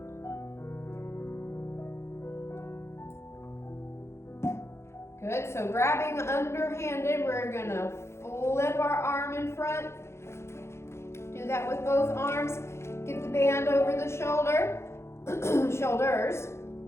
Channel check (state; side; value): late; right; 0.13 ms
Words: Good, so grabbing underhanded, we're going to flip our arm in front. Do that with both arms. Get the band over the shoulders.